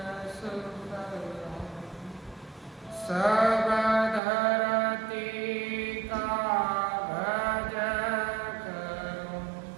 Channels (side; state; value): left; drops out; at 4.2 s